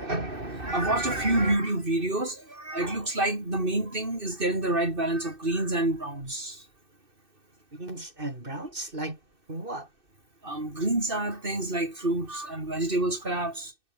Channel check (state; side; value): late; left; 2.6 ms